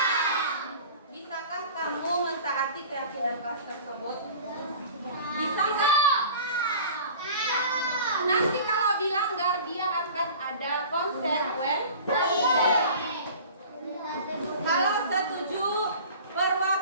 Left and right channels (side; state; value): both; inverted; correlation -0.41